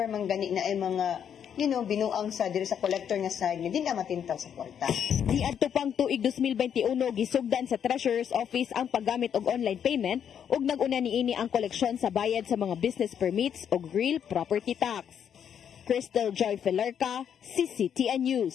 man gani na ay mga, binuang sa diri sa collector nga side, hindi na matintaw sa kwarta. Niadto pang tuig 2021, gisugdan sa Treasurer's Office ang paggamit og online payment ug nag-una niini ang koleksyon sa bayad sa mga business permits ug real property tax. Crystal Joy Pelerca, CCTN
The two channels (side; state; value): right; quieter; 8.5 dB